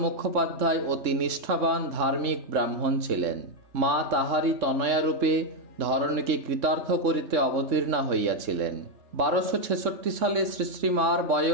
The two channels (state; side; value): late; left; 3.6 ms